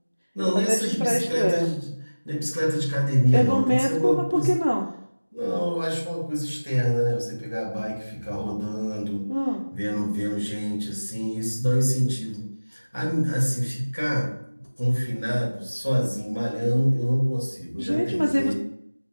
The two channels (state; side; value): inverted; both; correlation -1.00